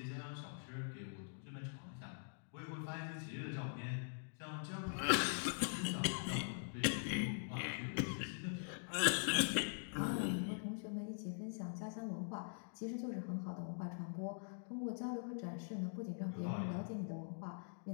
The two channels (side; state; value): right; silent; digital silence